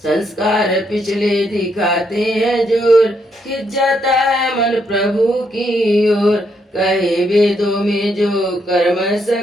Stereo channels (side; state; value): both; normal; correlation 0.76